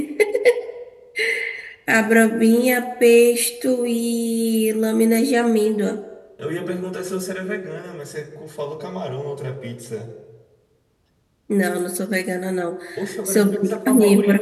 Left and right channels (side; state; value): both; identical; correlation 1.00